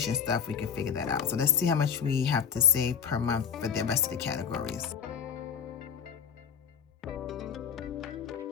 stuff, we can figure that out. So let's see how much we have to save per month for the rest of the categories.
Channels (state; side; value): quieter; right; 7.4 dB